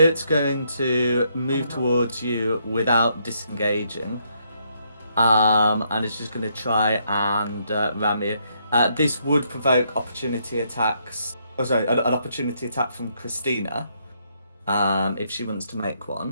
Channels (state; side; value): inverted; both; correlation -0.74